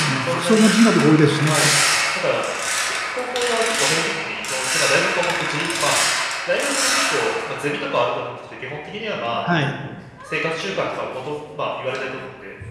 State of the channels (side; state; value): both; identical; correlation 1.00